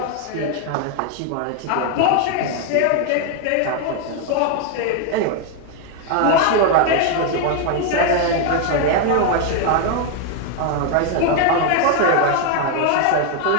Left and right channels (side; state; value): both; different; correlation 0.00